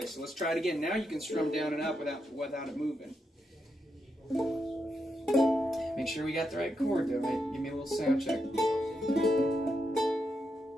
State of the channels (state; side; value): normal; both; correlation 0.83